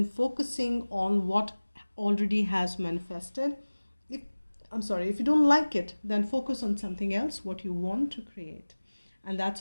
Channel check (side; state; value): both; inverted; correlation -1.00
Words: focusing on what already has manifested. If you don't like it, then focus on something else, what you want to create. And that's